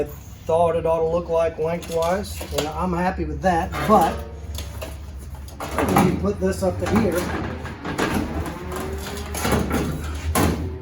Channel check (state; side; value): identical; both; correlation 1.00